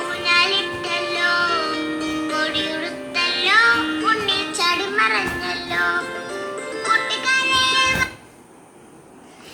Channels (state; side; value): identical; both; correlation 1.00